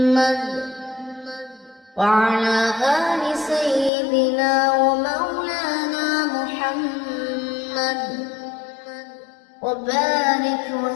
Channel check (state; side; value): drops out; right; at 3.9 s